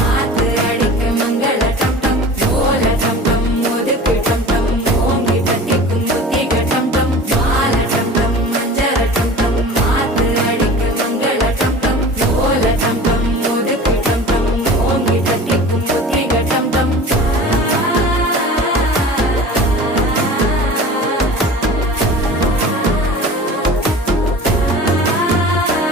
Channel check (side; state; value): both; normal; correlation 0.39